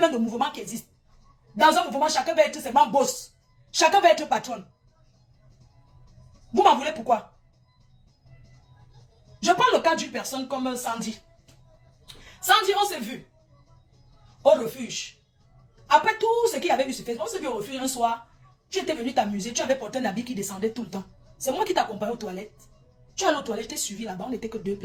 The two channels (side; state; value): both; identical; correlation 1.00